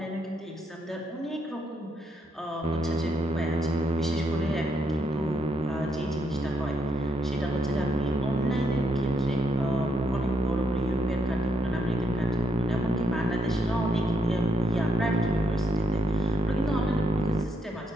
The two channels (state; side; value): normal; both; correlation 0.77